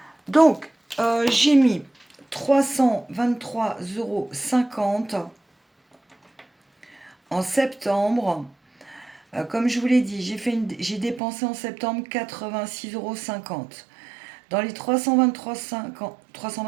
Donc, j'ai mis 323,50 € en septembre. Comme je vous l'ai dit, j'ai dépensé en septembre 86,50 €. Dans les 323,50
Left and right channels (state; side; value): drops out; left; at 11.2 s